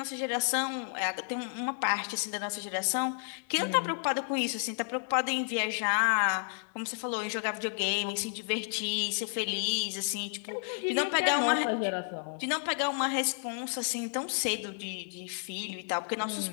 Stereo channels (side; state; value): right; silent; 57 dB below the other